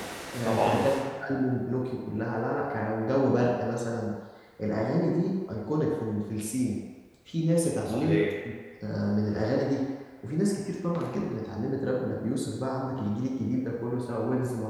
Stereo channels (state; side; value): identical; both; correlation 1.00